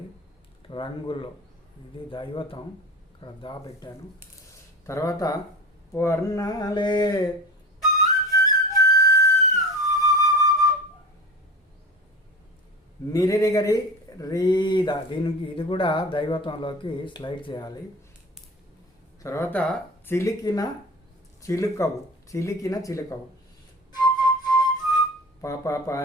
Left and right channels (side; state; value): both; normal; correlation 0.33